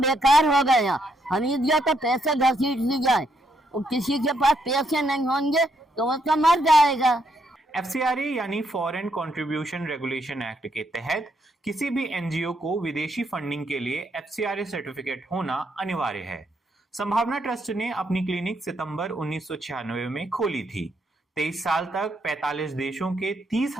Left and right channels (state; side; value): normal; both; correlation 0.75